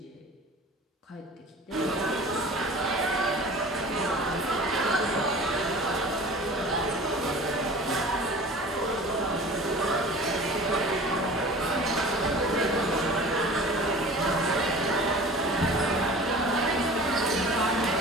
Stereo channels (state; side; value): normal; both; correlation 0.40